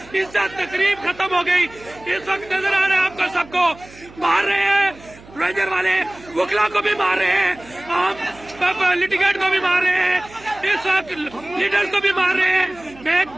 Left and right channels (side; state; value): right; noise; hum, 22 dB below the sound